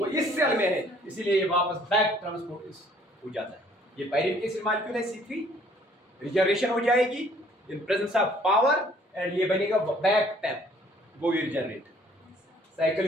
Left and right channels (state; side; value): normal; both; correlation 0.59